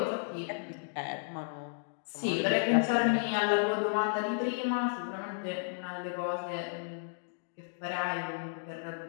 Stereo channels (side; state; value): right; silent; digital silence